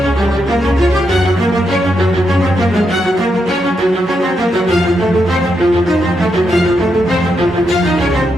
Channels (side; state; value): both; normal; correlation 0.82